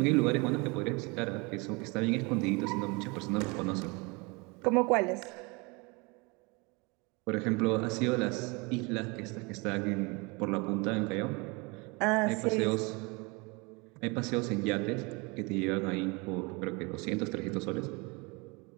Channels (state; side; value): quieter; left; 28.3 dB